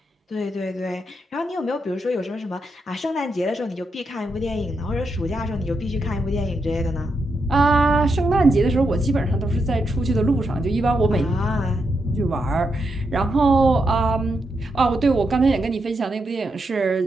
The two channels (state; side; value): normal; both; correlation 0.83